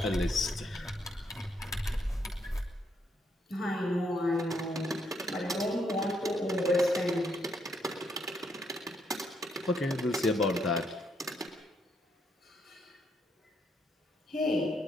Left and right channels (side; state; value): both; normal; correlation 0.75